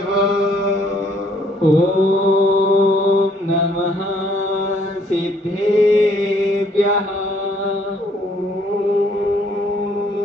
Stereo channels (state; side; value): normal; both; correlation 0.64